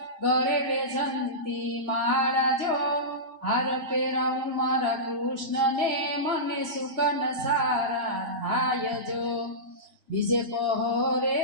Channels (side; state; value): left; late; 3.0 ms